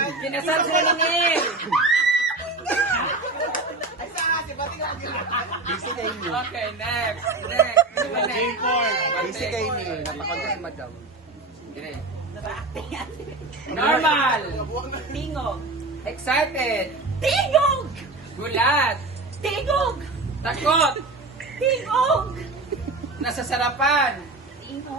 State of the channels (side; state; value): left; quieter; 3.2 dB